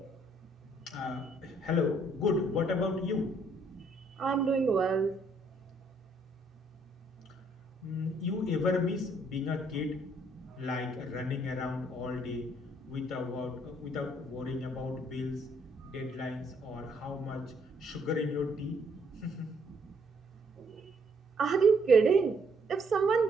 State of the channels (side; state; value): both; normal; correlation 0.68